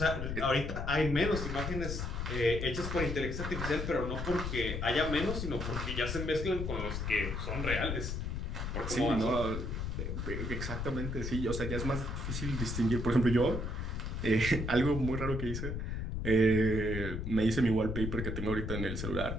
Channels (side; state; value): left; noise; rumble, 3 dB below the sound